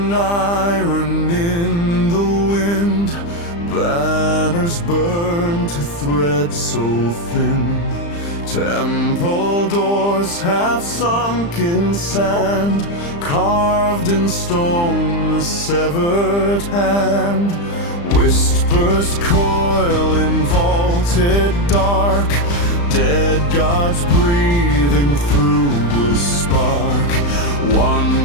iron in the wind, banners burn to threads so thin. Temple doors half sunk in sand, carved in stone a severed hand. Whispers coil in vaulted dark, dead gods breathing through a spark.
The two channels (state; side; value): late; right; 35 ms